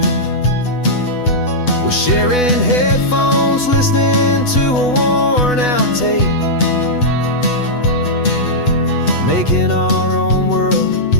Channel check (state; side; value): late; right; 8.1 ms